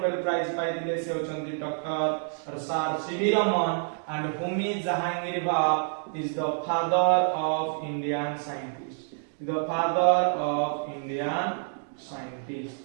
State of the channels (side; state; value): left; silent; digital silence